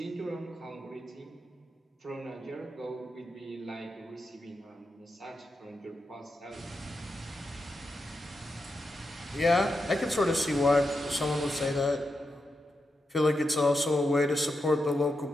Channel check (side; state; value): both; normal; correlation 0.87